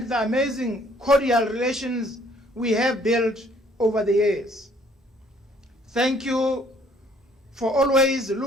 the amazing cordial relations we have built over the years. Thank you for always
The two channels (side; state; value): both; normal; correlation 0.61